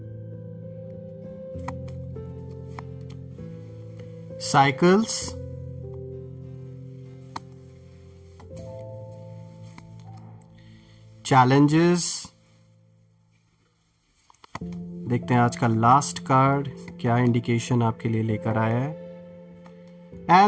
Cycles. Challenges. देखते हैं आज का लास्ट कार्ड क्या इंडिकेशन आपके लिए लेकर आया है।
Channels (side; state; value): both; identical; correlation 1.00